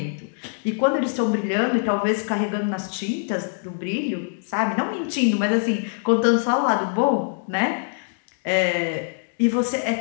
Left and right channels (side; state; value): right; silent; digital silence